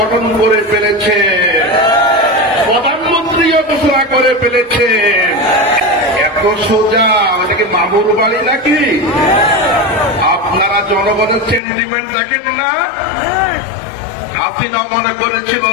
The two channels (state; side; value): drops out; right; at 11.6 s